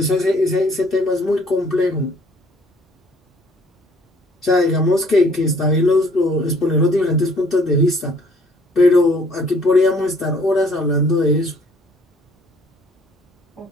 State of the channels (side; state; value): both; normal; correlation 0.60